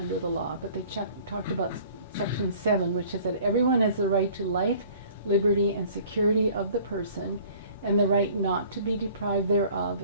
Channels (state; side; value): inverted; both; correlation -0.51